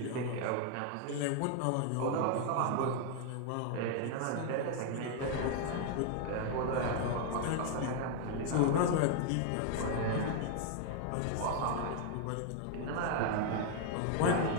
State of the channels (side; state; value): both; different; correlation 0.00